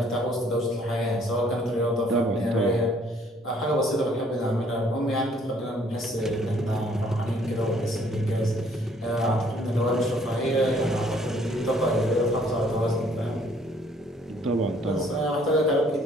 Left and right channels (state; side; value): normal; both; correlation 0.62